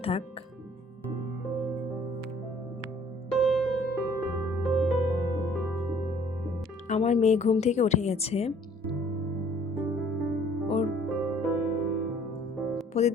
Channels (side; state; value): both; normal; correlation 0.56